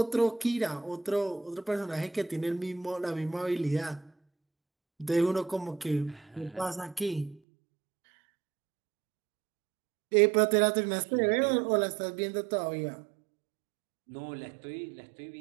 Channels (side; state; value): left; drops out; at 7.4 s